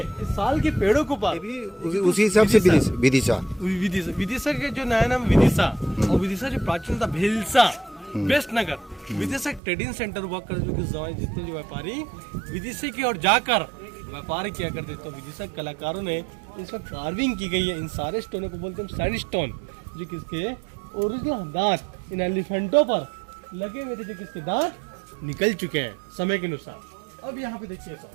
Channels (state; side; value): drops out; left; at 9.6 s